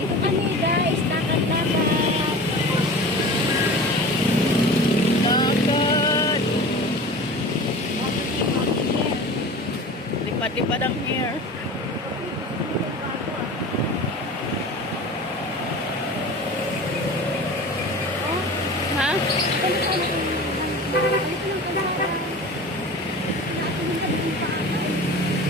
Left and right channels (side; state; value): both; normal; correlation 0.36